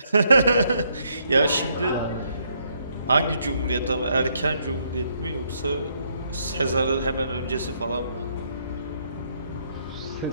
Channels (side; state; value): both; inverted; correlation -0.72